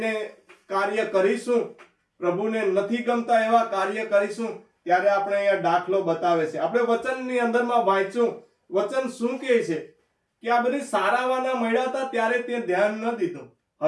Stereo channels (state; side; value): identical; both; correlation 1.00